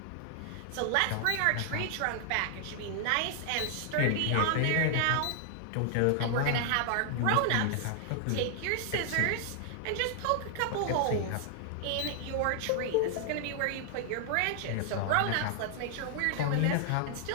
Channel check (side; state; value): both; different; correlation 0.00